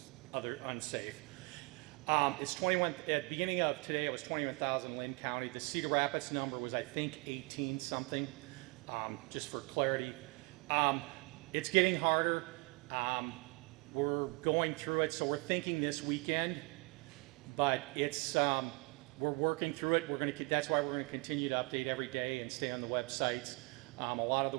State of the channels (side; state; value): left; quieter; 28.1 dB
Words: other unsafe. It's 21. At the beginning of today, it was 21,000 in Lynn County. The Cedar Rapids number was, I think, 18 something. Just for clarity, it's getting harder. We're going through it, so we're thinking this weekend. But it's we're working through it. That's why we're going to continue to update every day and stay on the websites. A lot